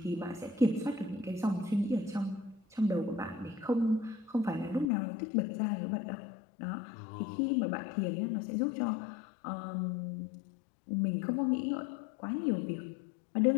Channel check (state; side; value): drops out; right; at 4.9 s